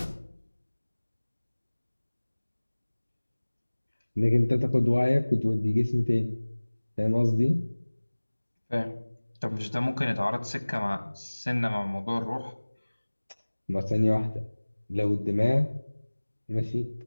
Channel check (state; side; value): inverted; both; correlation -1.00